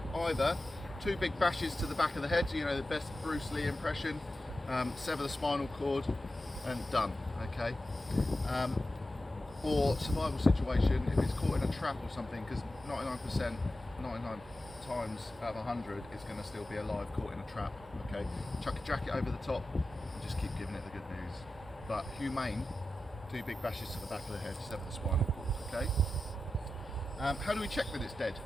either 2 big bashes to the back of the head, so you know the best Bruce Lee impression, sever the spinal cord and done, okay? Or survival situation, if it's caught in a trap or something, because 99 times out of 100 it's going to still be alive caught in a trap, okay? Chuck a jacket over the top and just keep giving it the good news. But humane, 2 big bashes to the back of the head, sever the spinal cord, okay? How do we check that it's dead,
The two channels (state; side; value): normal; both; correlation 0.93